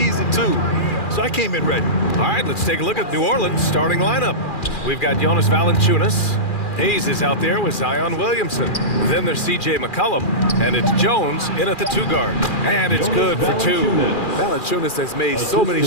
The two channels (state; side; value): late; right; 2.4 ms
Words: too. So I came in ready. All right, let's take a look at New Orleans' starting lineup. We've got Jonas Valanciunas. Hayes is out there with Zion Williamson. Then there's C.J. McCollum, and it's Jones in at the 2 guard. And it's good for 2. Valanciunas has made so many